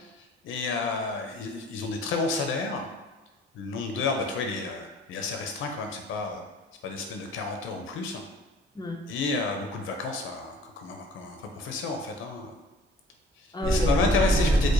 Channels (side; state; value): both; normal; correlation 0.50